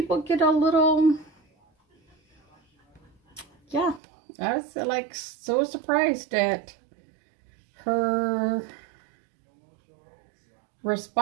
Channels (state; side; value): drops out; left; at 4.0 s